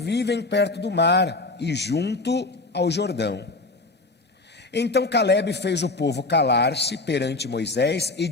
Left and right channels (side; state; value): right; quieter; 3.2 dB